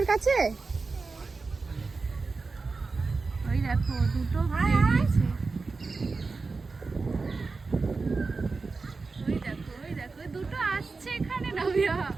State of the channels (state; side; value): quieter; left; 4.1 dB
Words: কাছে। ওই দেখো দুটো বেরিয়েছে। ওই দেখো ওই দেখো দুটো আসছে এখানে নাবিহা।